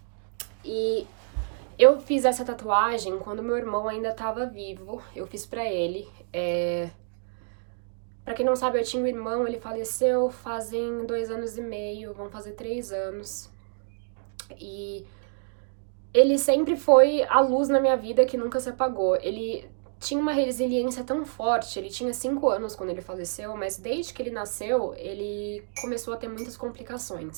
E eu fiz essa tatuagem quando meu irmão ainda tava vivo. Eu fiz pra ele. Pra quem não sabe, eu tinha um irmão, ele faleceu fazem 2 anos e meio, vão fazer 3 anos. E ele sempre foi a luz na minha vida que nunca se apagou. Ele tinha uma resiliência tão forte, ele tinha 5 anos quando ele faleceu, mas desde que ele nasceu, ele começou a ter muitas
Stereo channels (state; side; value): silent; left; digital silence